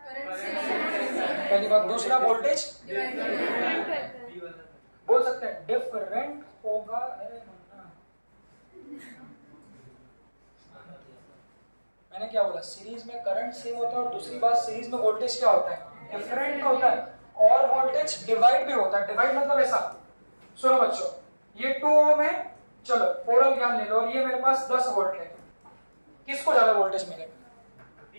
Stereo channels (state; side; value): inverted; both; correlation -1.00